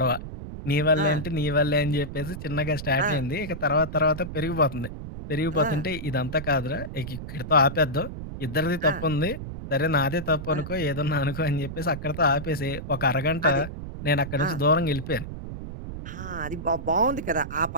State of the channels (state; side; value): noise; right; rumble, 9 dB below the sound